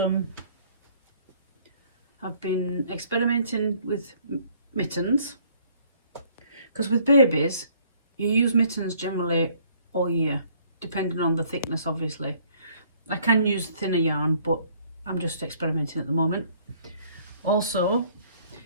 been experimenting with mittens, because with babies you use mittens generally all year, depending on the thickness obviously. I can use thinner yarn, but I'm just experimenting at the moment. Also,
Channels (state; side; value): inverted; both; correlation -0.61